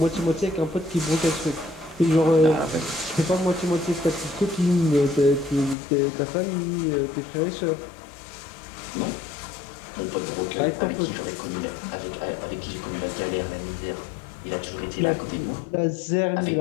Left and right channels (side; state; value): right; drops out; at 5.8 s